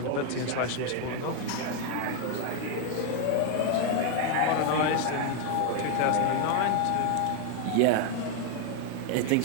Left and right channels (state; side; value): different; both; correlation 0.01